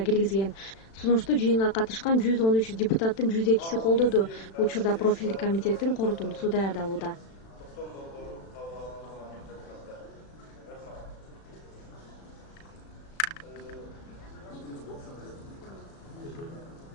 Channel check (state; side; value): late; right; 36 ms